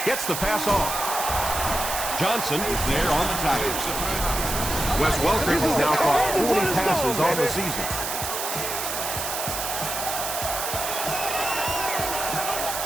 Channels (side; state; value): right; noise; hiss, 4 dB below the sound